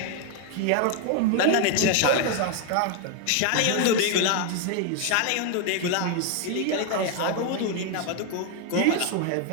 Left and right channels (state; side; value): different; both; correlation 0.01